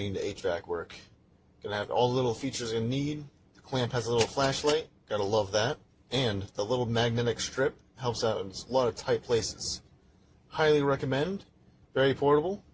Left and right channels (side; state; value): both; identical; correlation 1.00